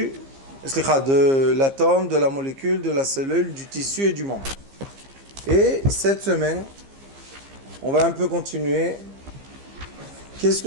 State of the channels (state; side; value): late; left; 15 ms